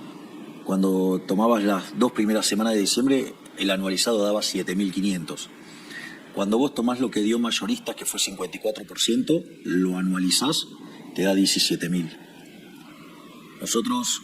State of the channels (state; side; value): identical; both; correlation 1.00